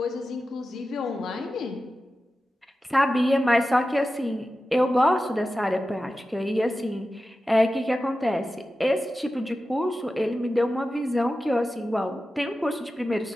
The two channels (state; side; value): normal; both; correlation 0.93